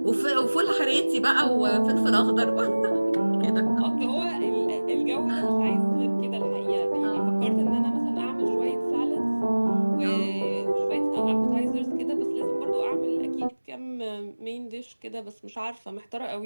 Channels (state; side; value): inverted; both; correlation -1.00